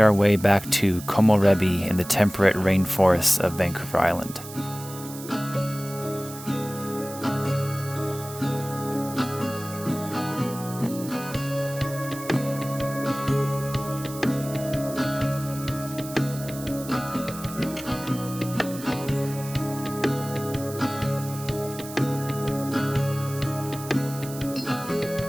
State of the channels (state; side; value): noise; right; hiss, 14 dB below the sound